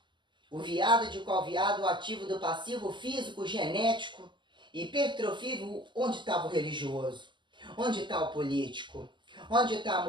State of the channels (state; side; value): late; left; 0.22 ms